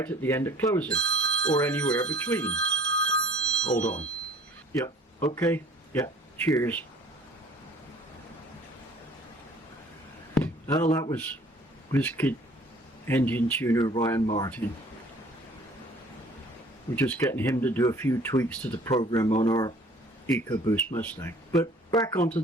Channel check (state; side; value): normal; both; correlation 0.52